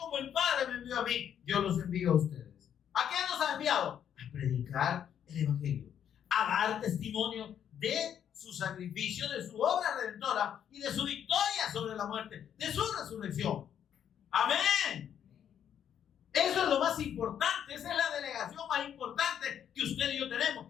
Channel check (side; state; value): right; quieter; 9.2 dB